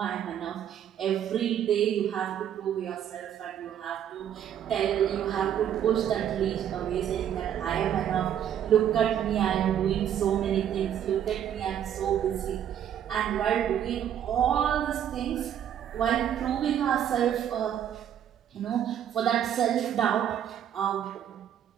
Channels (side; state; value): left; quieter; 9.8 dB